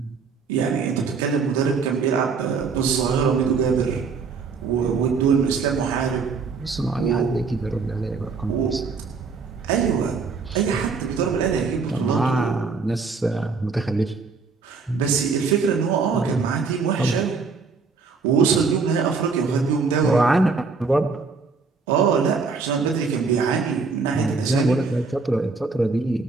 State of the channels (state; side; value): quieter; left; 4.8 dB